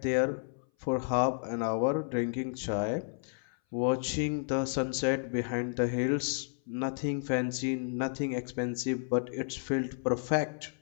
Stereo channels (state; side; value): silent; right; 56 dB below the other